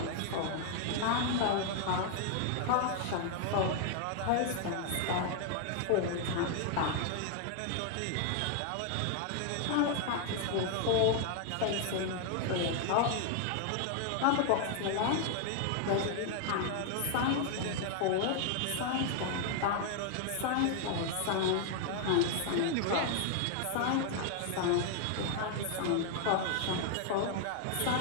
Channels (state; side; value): different; both; correlation 0.00